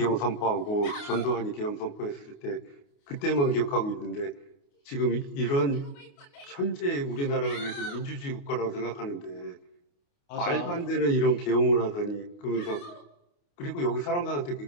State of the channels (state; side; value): late; right; 28 ms